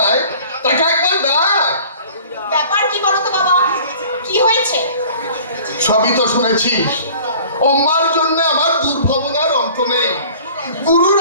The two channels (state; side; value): inverted; both; correlation -0.48